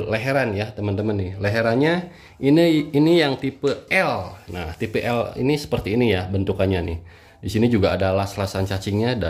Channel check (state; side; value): identical; both; correlation 1.00